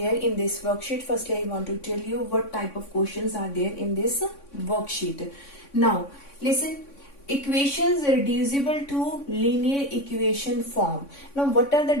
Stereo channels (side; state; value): right; late; 3.6 ms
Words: in this worksheet? Firstly, I want to tell you what type of questions are there in this worksheet. Now listen, equations reducible to linear equation form. Now what are the